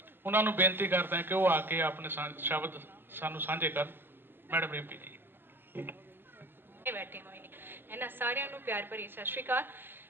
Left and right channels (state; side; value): late; left; 0.098 ms